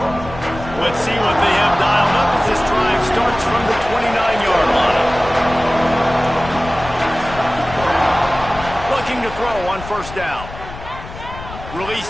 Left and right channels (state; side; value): noise; left; rumble, 13 dB below the sound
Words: Let's see what they have dialed up as this drive throw on first down. Release